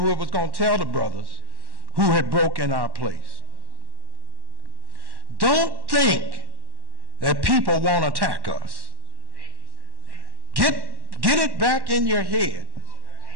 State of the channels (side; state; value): left; late; 1.1 ms